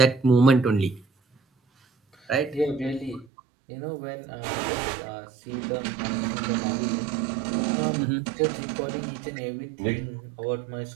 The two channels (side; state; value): left; drops out; at 3.2 s